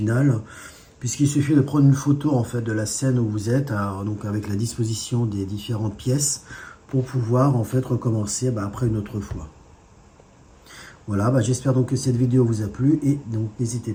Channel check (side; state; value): both; identical; correlation 1.00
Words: Puisqu'il suffit de prendre une photo en fait de la scène où vous êtes, donc avec la disposition des différentes pièces, pour pouvoir en fait recommencer après une autre fois. Voilà, j'espère donc que cette vidéo vous a plu et donc